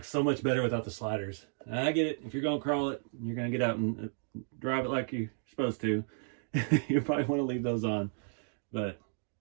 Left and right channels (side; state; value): left; silent; 56 dB below the other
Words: so much better without the sliders. I get it. If you're going to crawl it, you're going to get out and drive it like you're supposed to. You probably want to leave those on. But